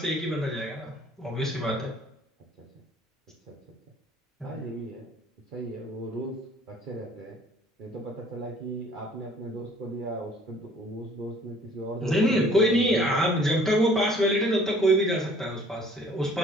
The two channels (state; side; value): normal; both; correlation 0.55